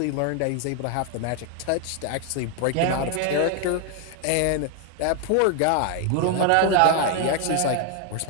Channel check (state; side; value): different; both; correlation 0.01